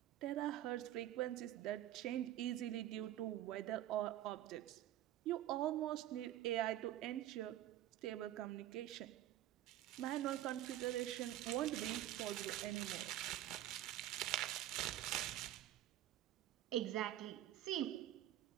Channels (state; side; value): quieter; left; 13.3 dB